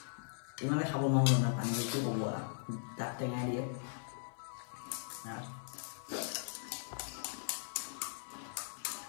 ইমানে খাব নোৱাৰো না পানী কি ক'ব দাঁত টেঙাই দিয়ে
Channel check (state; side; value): silent; right; 52 dB below the other